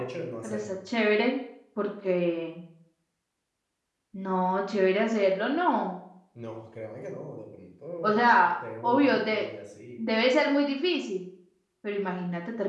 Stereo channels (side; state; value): both; identical; correlation 1.00